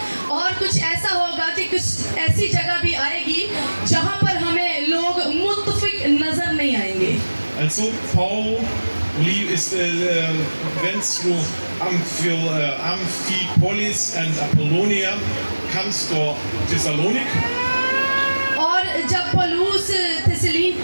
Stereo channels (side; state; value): both; inverted; correlation -1.00